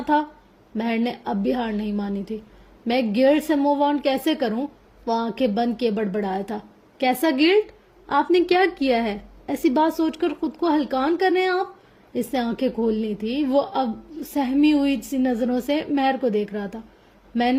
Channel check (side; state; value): both; identical; correlation 1.00